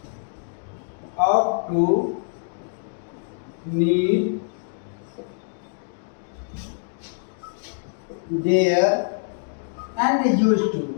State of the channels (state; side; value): silent; right; digital silence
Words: ought to, need, dare and used to।